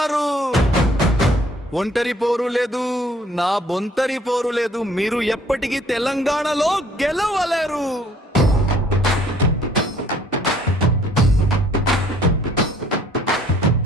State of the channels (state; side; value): normal; both; correlation 0.59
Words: ఒంటరి పోరు లేదు, నా బొంతరి పోరు లేదు. మీరు ఎప్పటికీ తెలంగాణలో గెలవలేరు.